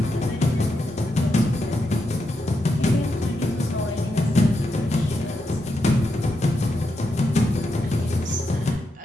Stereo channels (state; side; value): normal; both; correlation 0.84